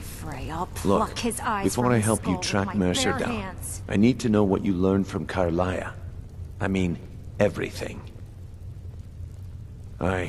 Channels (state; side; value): identical; both; correlation 1.00